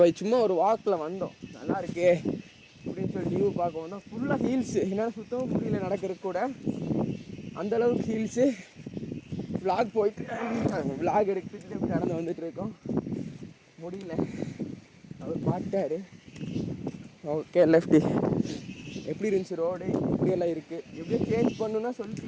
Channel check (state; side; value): identical; both; correlation 1.00